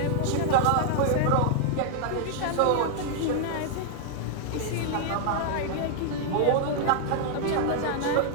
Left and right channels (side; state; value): both; different; correlation -0.01